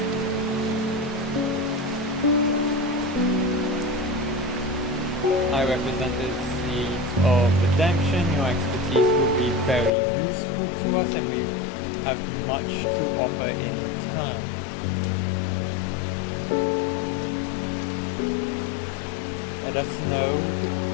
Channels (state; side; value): drops out; right; at 9.9 s